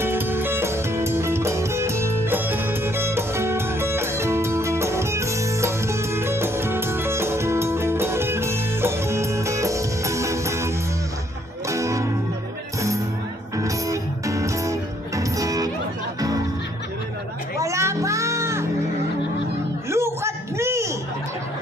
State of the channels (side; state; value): both; normal; correlation 0.67